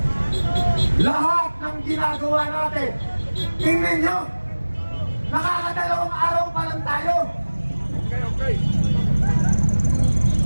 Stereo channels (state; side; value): inverted; both; correlation -1.00